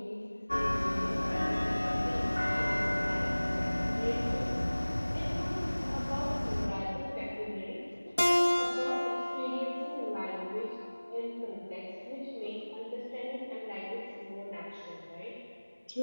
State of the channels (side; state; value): both; inverted; correlation -1.00